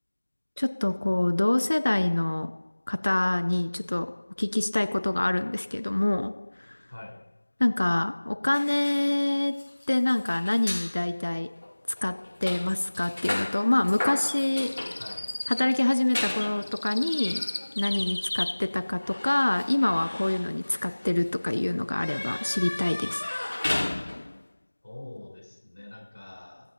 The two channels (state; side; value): inverted; both; correlation -1.00